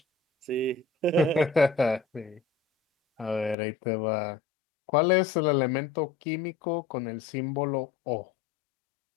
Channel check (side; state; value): right; drops out; at 3.6 s